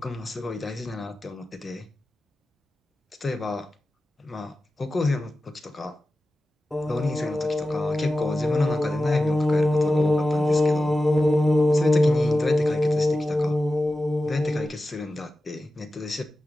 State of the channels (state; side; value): normal; both; correlation 0.94